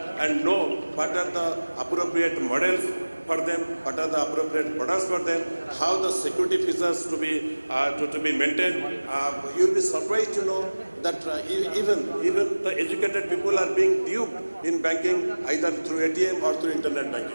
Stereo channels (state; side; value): inverted; both; correlation -1.00